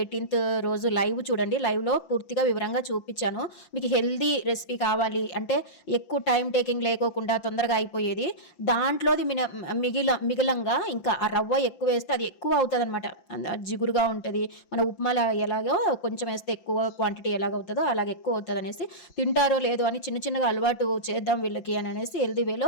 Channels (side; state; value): right; late; 5.8 ms